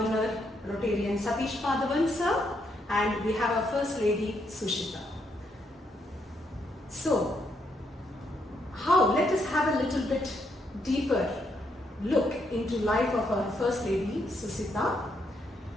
Rotarian Satish Madhavan sir, and we have our First Lady Susitha. So, let us have a little bit deeper look into life of our First Lady Susitha.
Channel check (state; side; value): normal; both; correlation 0.76